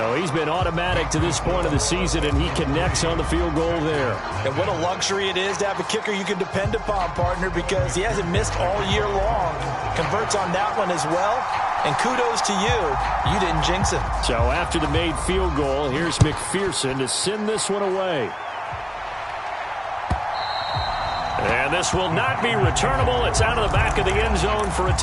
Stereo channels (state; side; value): identical; both; correlation 1.00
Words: he's been automatic to this point of the season, and he connects on the field goal there. And what a luxury it is to have a kicker you can depend upon, partner, because he hasn't missed all year long. Converts on that one as well. And kudos to you. You didn't jinx it. So after the made field goal, here's McPherson to send this one away. And this will not be returnable. It's out of the back of the end zone for a